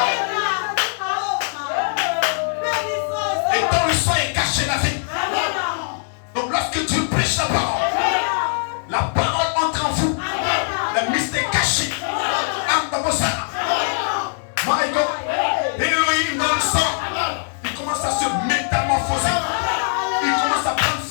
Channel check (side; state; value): right; silent; 65 dB below the other